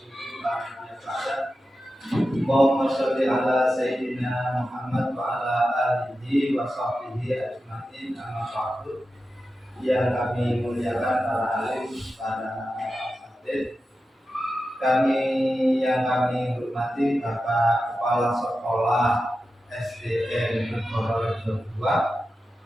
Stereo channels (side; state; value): both; normal; correlation 0.92